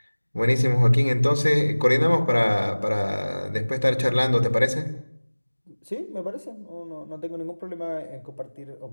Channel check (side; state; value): both; inverted; correlation -1.00